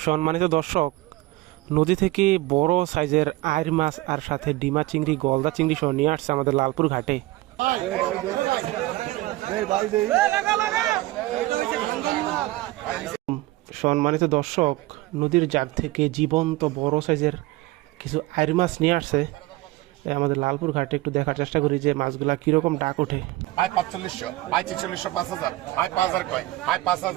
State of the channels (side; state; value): left; quieter; 18.6 dB